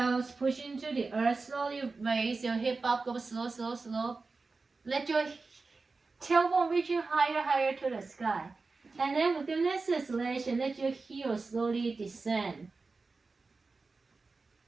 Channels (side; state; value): left; quieter; 4.0 dB